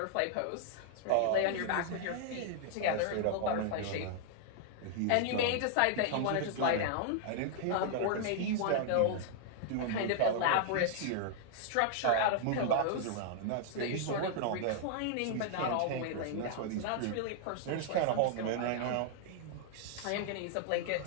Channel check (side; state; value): both; different; correlation -0.01